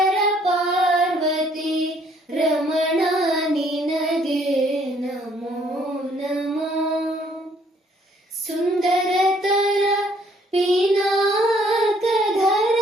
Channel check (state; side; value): normal; both; correlation 0.64